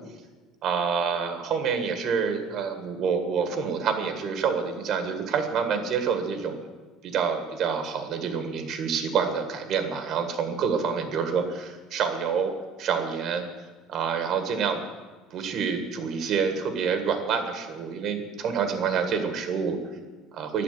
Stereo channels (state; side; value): quieter; left; 5.9 dB